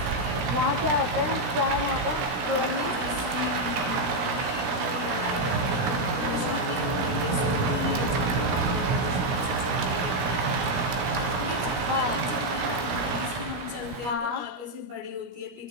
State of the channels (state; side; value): late; left; 17 ms